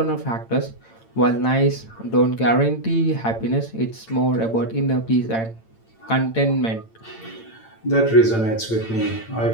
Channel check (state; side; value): late; right; 8.9 ms